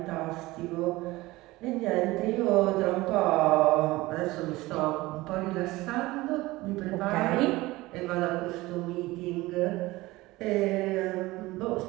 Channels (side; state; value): left; quieter; 19.6 dB